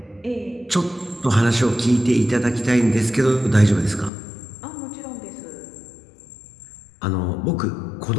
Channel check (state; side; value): drops out; right; at 4.1 s